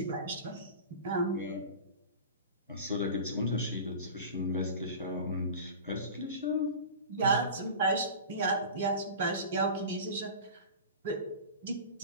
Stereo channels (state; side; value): inverted; both; correlation -0.34